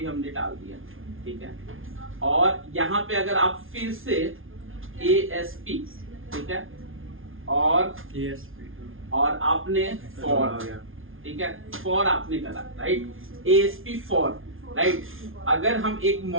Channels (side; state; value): left; late; 0.59 ms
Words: हमने डाल दिया, ठीक है। और यहाँ पे अगर आप फिर से ASP, ठीक है, और आपने फॉर, ठीक है, फॉर आपने करा, राइट, ASP फॉर, राइट। अगर हम एक